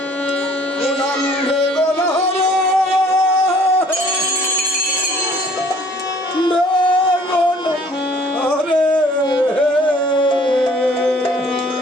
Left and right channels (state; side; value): normal; both; correlation 0.56